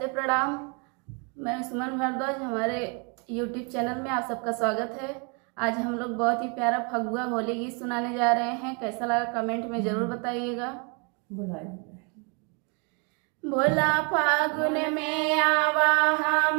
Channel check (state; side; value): quieter; left; 34.9 dB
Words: प्रणाम। मैं सुमन भारद्वाज, हमारे यूट्यूब चैनल में आप सबका स्वागत है। आज हम लोग बहुत ही प्यारा फगुआ होली गीत सुनाने जा रहे हैं। कैसा लगा कमेंट में ज़रूर बताइएगा। भोला फागुन में आवा